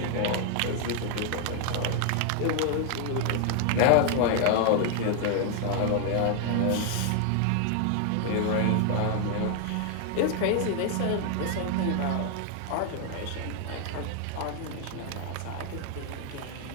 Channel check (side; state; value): both; different; correlation 0.00